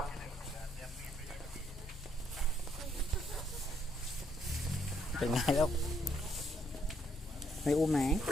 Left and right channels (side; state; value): both; normal; correlation 0.72